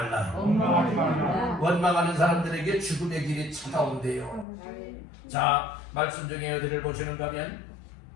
원망하지 말라. 원망하는 사람들에게 죽음의 길이 찾아온대요. 자, 말씀 중에 어디를 보시는가 하면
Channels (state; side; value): drops out; right; at 4.5 s